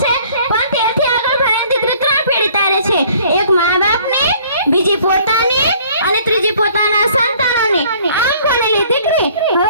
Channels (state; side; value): inverted; both; correlation -0.56